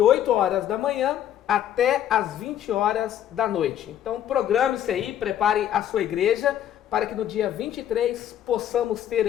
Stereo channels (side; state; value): right; quieter; 10.8 dB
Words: horas da manhã até as 20 horas da noite. Então programe-se aí, prepare a sua igreja, para que no dia 23 possamos ter